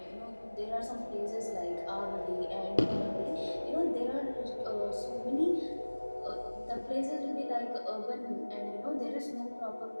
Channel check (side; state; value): both; inverted; correlation -1.00